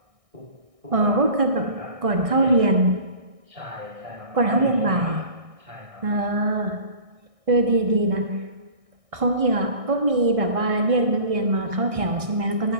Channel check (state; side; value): late; left; 1.6 ms